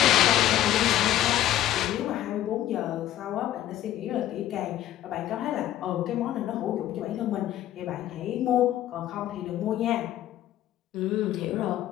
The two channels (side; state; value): right; quieter; 12.9 dB